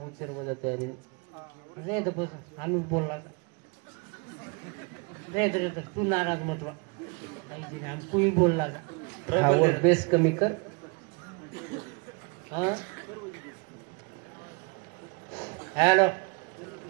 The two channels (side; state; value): left; quieter; 32.2 dB